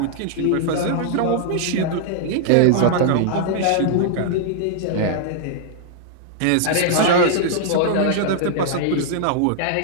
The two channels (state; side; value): different; both; correlation -0.01